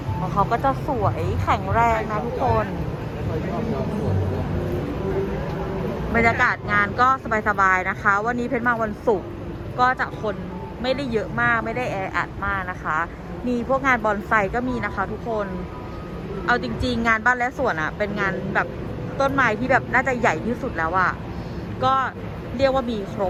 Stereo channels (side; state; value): both; identical; correlation 1.00